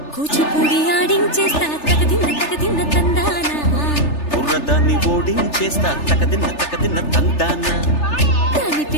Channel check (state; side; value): late; right; 3.3 ms